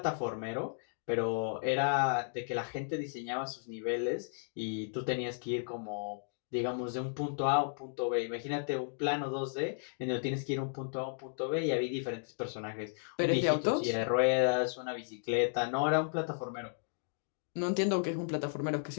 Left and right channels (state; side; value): silent; right; digital silence